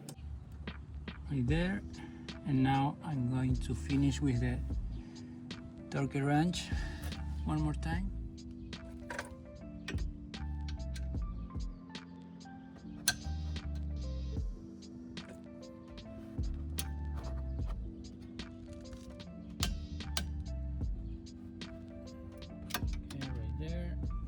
Right there. And now I'm going to finish with the torque wrench one more time. Okay, right there.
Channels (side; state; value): both; identical; correlation 1.00